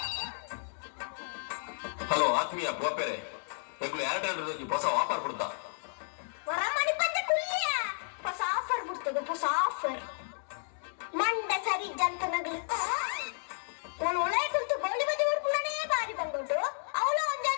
ಹಲೋ ಆತ್ಮೀಯ ಗೋಪೆರೆ ಎಗ್ಲು ಎರಡು ಹೊಸ ಆಫರ್ ಬಿಡ್ತಾ ಹೊಸ ಆಫರ್ ಬಿಡ್ತದೆ ಹೊಸ ಆಫರ್ ಮಂಡ ಸರಿ ಜಂತ ನಗಲು ನಾನು ಒಳ್ಳೆ ಕುಂತು ಗೋಳಿ ಬದಿ ಹುಡ್ಕೊಂಡೇ ಬಾರಿ ಬಂದ್ಬಿಟ್ಟು ಅವಳು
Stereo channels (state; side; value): silent; right; digital silence